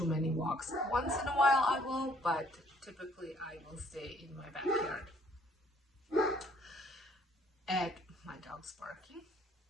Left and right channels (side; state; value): both; normal; correlation 0.62